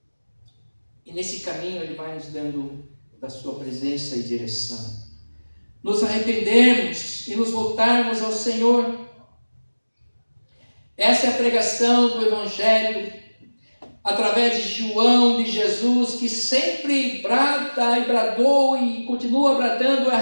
E nesse caminho Ele vai nos dando da sua presença e direção. Nos arrependermos e nos voltarmos ao Senhor. Essa é a pregação do Evangelho, através de João, de Jesus, que sempre brada e bradou e continua bradando:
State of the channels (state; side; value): inverted; both; correlation -1.00